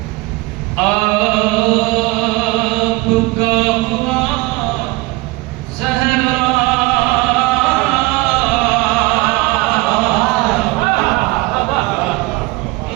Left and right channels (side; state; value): left; quieter; 22.0 dB